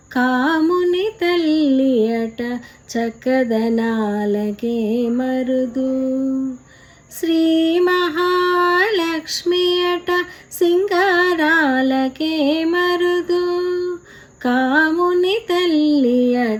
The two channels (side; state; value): both; identical; correlation 1.00